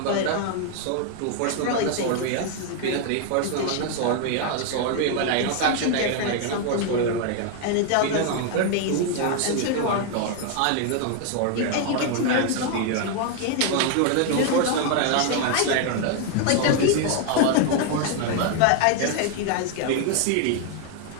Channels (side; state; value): both; different; correlation 0.01